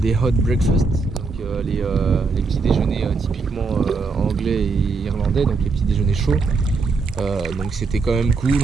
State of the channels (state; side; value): quieter; left; 4.3 dB